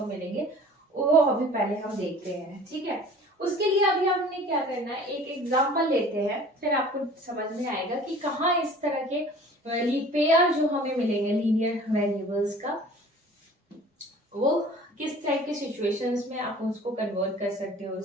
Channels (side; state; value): both; normal; correlation 0.46